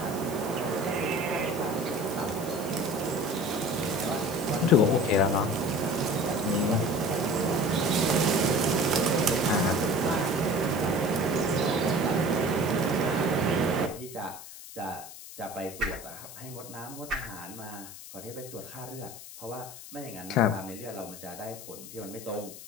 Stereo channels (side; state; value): left; noise; hiss, 14 dB below the sound